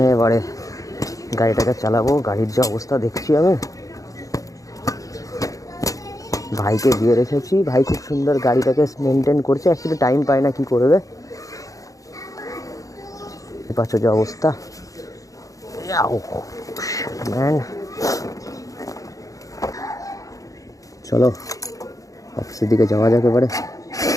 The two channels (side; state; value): right; late; 0.16 ms